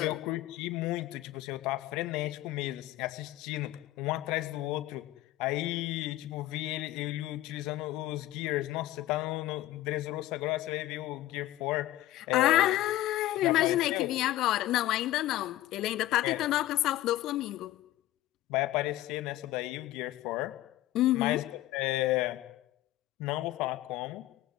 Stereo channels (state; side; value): quieter; right; 15.5 dB